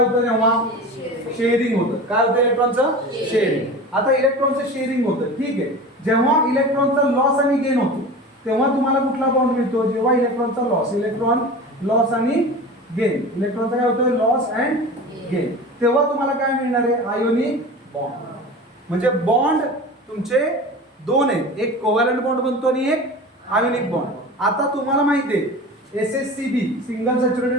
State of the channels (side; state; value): both; normal; correlation 0.33